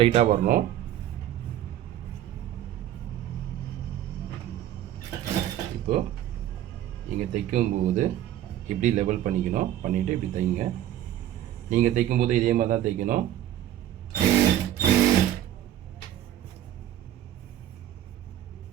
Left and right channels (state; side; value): quieter; left; 12.2 dB